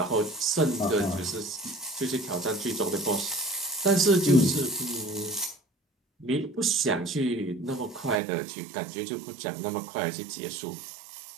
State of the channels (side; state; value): left; drops out; at 8.2 s